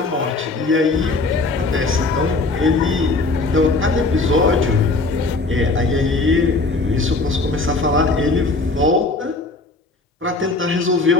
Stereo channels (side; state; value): right; quieter; 3.4 dB